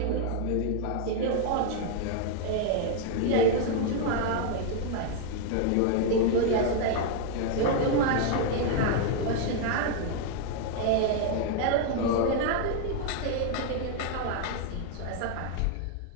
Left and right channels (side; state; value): both; different; correlation 0.00